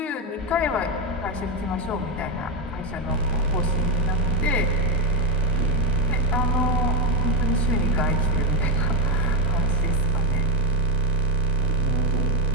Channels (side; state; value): both; normal; correlation 0.09